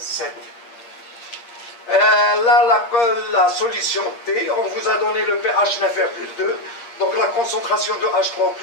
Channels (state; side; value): late; right; 8.6 ms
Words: Là, la solution T, on vous a donné le pH 9,2. Donc la concentration de